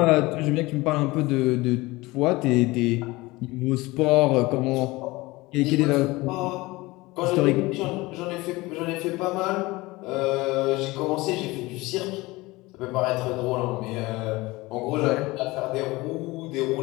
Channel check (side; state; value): right; quieter; 21.2 dB